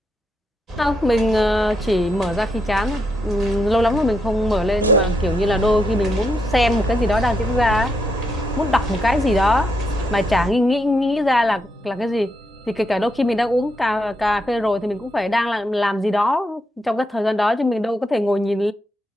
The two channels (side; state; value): both; normal; correlation 0.80